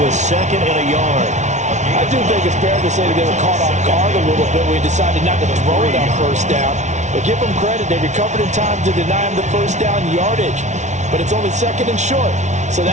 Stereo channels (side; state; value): left; late; 0.33 ms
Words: 2nd and a yard. I do think it's fair to say that they were caught off guard a little bit when he decided not to throw it on first down. But give them credit, they recovered in time to deny him the first down yardage. But it's only 2nd and short, so